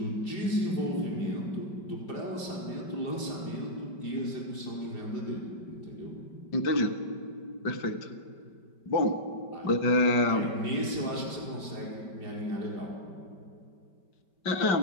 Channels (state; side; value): late; right; 5.2 ms